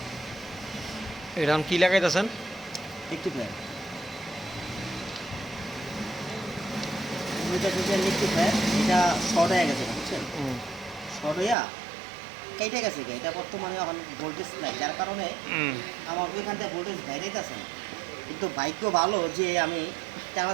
এরকম কি লাগাইতেছেন? একটু ফ্যান একটু ফ্যান এটা শর্ট হয়ে গেছে বুঝছেন, শর্ট হইয়া কেটে গেছে এটা বর্তমানে এখন ভোল্টেজ নাই, যার কারণে আমার ওইখান থেকে ভোল্টেজ বাইরে আছে না। কিন্তু বাইকও ভালো যে আমি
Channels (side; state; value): left; drops out; at 11.6 s